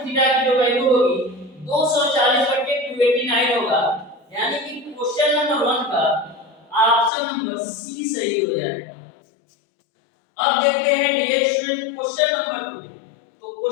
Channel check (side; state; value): right; drops out; at 7.1 s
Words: थीटा की जो वैल्यू होगी 240/289 होगा, यानी कि क्वेश्चन नंबर 1 का ऑप्शन नंबर सी सही हो जाएगा। अब देखते हैं डियर स्टूडेंट क्वेश्चन नंबर 2। तो